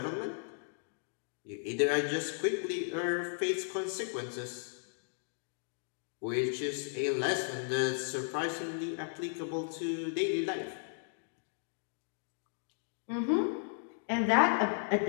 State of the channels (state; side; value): silent; right; digital silence